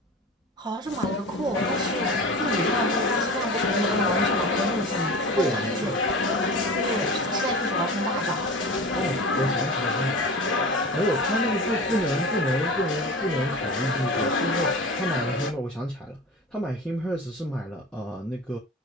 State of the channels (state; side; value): normal; both; correlation 0.33